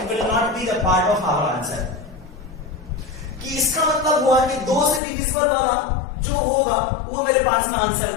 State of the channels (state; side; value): drops out; right; at 5.0 s